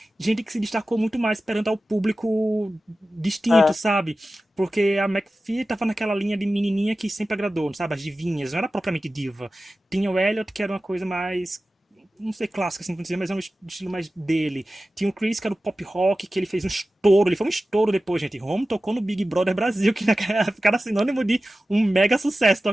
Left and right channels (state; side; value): normal; both; correlation 0.95